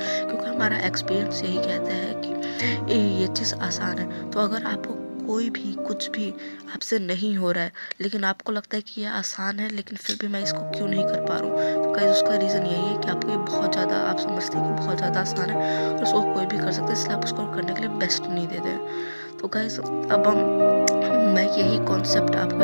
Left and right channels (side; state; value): both; inverted; correlation -1.00